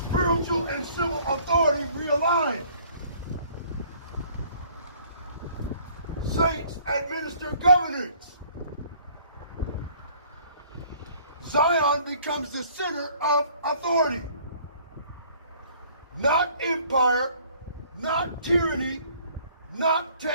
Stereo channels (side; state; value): both; inverted; correlation -0.57